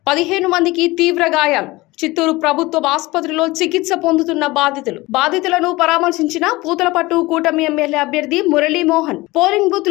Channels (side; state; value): right; quieter; 20.9 dB